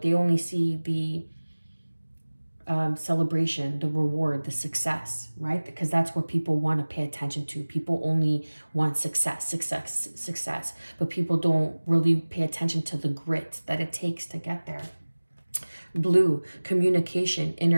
they only see the celebration, the reward, the success, right? Because that's what people want to pay attention to. People only want success. But people don't really pay attention to the grit that it takes to get there. Blue, communication,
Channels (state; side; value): inverted; both; correlation -1.00